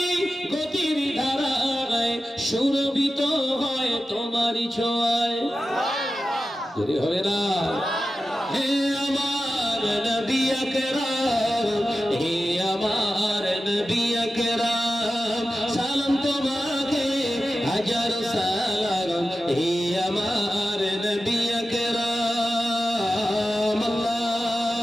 গতির ধারায় সুরভিত হয় তোমারই ছোঁয়ায় জোরে হবে না হে আমার নবী আকরাম হে আমার নবী আকরাম সালাম তোমাকে হাজার সালাম হে আমার নবী আকরাম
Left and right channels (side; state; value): both; normal; correlation 0.93